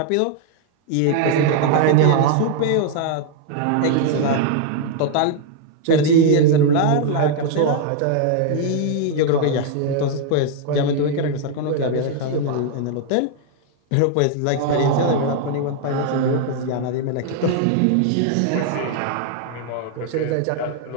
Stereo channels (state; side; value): different; both; correlation 0.00